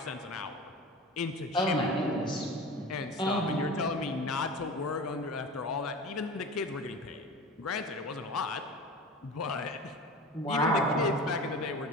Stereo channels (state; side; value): normal; both; correlation 0.34